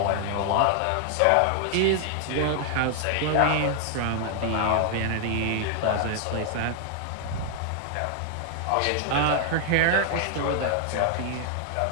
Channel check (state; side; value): different; both; correlation 0.00